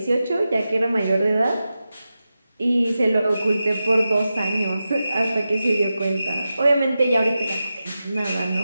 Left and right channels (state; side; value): inverted; both; correlation -0.92